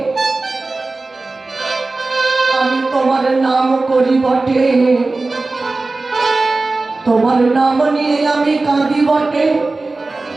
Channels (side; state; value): left; quieter; 3.4 dB